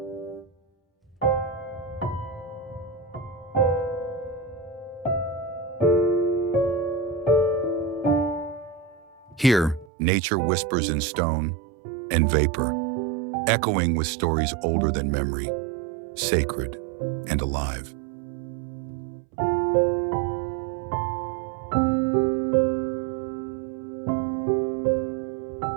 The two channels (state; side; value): drops out; left; at 9.9 s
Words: Here, nature whispers in stone and vapor, echoing with stories older than memory, sacred and alive.